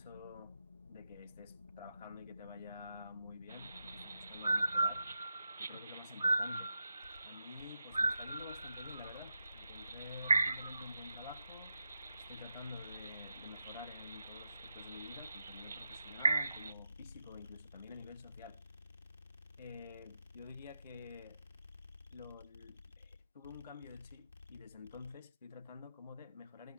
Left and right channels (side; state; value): both; inverted; correlation -0.88